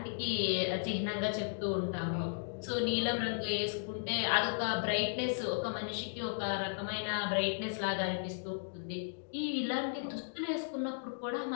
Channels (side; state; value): right; silent; digital silence